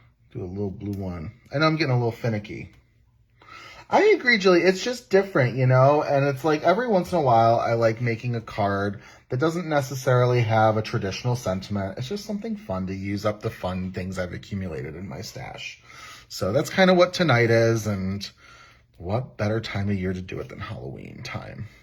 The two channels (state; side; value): identical; both; correlation 1.00